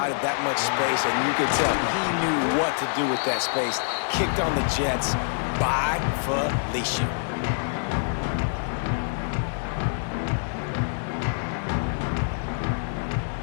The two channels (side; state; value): right; silent; digital silence